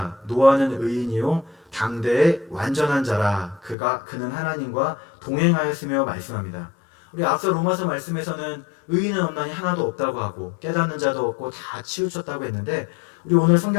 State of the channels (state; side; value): drops out; right; at 3.8 s